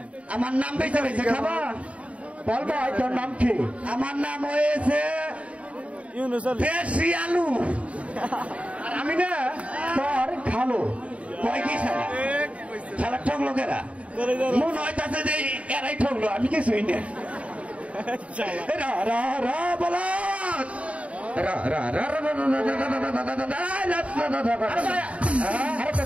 আমার নাম বেঁচে রয়েছে খাবা বল ভাই তোর নাম কি আমার নাম হয়েছে দেশি আলু আর আমি না তোর খালো কয় কি সারা ঠকলো কেরা মন হইতাছে যে এরাই ঠকলো আমি কিছুই না বলো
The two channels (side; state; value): left; late; 0.065 ms